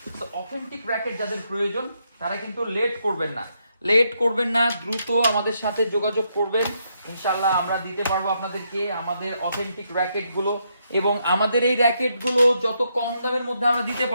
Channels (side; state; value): both; inverted; correlation -0.78